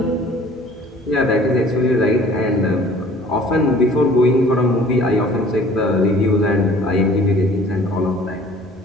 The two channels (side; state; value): both; normal; correlation 0.51